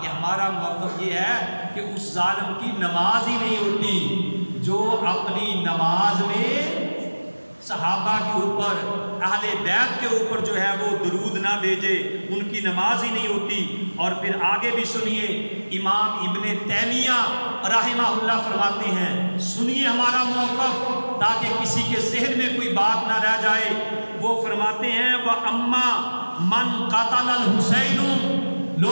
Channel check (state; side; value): inverted; both; correlation -1.00